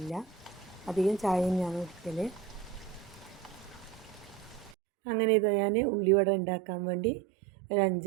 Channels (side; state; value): left; drops out; at 4.8 s